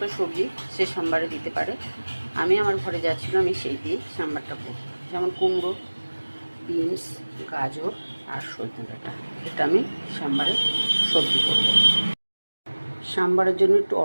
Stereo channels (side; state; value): both; inverted; correlation -1.00